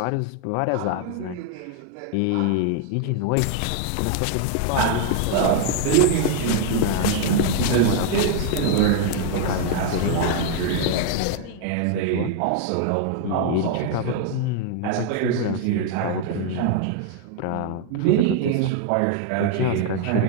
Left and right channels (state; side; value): different; both; correlation 0.00